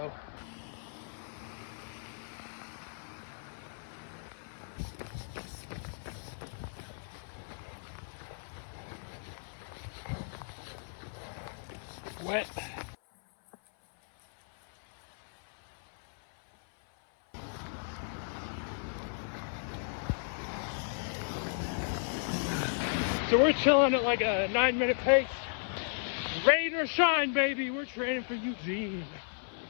Wet. So we're chilling at like a 9-minute pace. Rain or shine, baby. We're training for Eugene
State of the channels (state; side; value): silent; right; 55 dB below the other